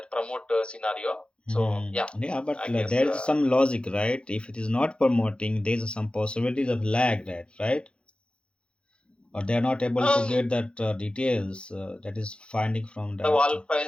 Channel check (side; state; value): right; late; 0.056 ms